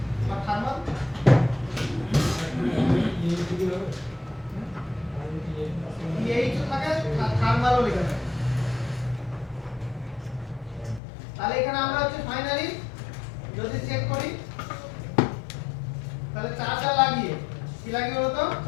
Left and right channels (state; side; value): drops out; right; at 11.0 s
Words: আর থার্মাল এই তো থাকে থার্মালও লেখা থাকে। তাহলে এখানে আমরা হচ্ছে ফাইনালি যদি চেক করি তাহলে চার্জার লাগিয়ে কি লাগিয়ে বলো তো,